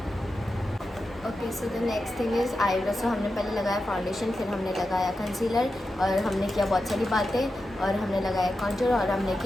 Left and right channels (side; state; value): both; normal; correlation 0.90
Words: Okay so the next thing is eyebrow. सो हमने पहले लगाया फाउंडेशन, फिर हमने लगाया कंसीलर और हमने किया बहुत सारी बातें और हमने लगाया कॉन्टूर और हमने